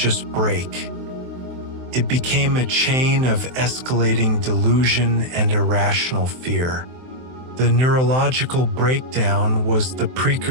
break. It became a chain of escalating delusion and irrational fear. The neurological breakdown was the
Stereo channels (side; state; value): left; late; 23 ms